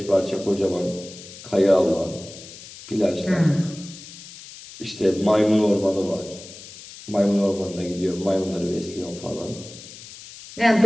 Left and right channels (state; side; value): noise; left; hiss, 16 dB below the sound